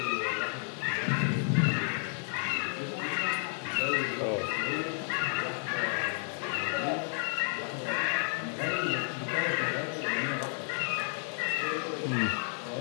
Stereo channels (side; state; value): right; silent; 57 dB below the other